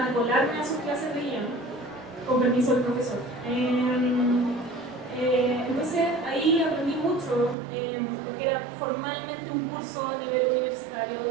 colarme a sus clases de guión con permiso del profesor. Entonces ahí aprendí mucho, porque era formalmente un curso a nivel universitario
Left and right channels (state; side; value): drops out; left; at 7.6 s